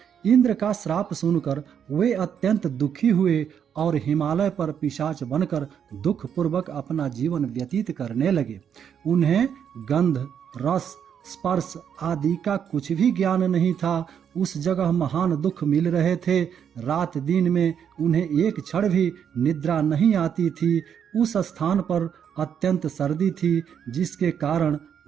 इंद्र का श्राप सुनकर वे अत्यंत दुखी हुए और हिमालय पर पिशाच बनकर दुख पूर्वक अपना जीवन व्यतीत करने लगे। उन्हें गंध, रस, स्पर्श आदि का कुछ भी ज्ञान नहीं था। उस जगह महान दुख मिल रहे थे। रात दिन में उन्हें एक क्षण भी निद्रा नहीं आती थी। उस स्थान पर अत्यंत सर्दी थी, जिसके कारण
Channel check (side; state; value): left; quieter; 8.2 dB